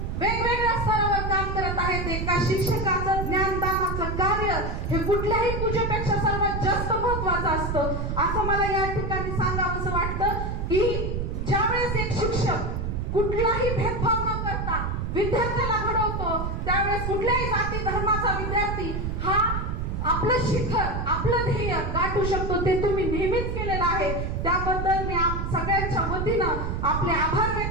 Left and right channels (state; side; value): noise; right; rumble, 2 dB below the sound